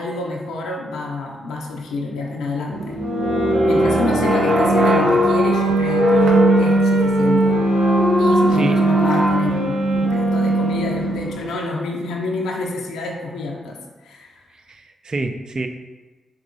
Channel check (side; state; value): both; normal; correlation 0.74